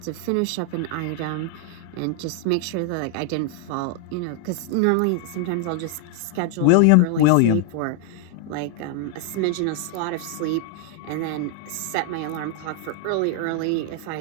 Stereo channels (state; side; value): different; both; correlation 0.00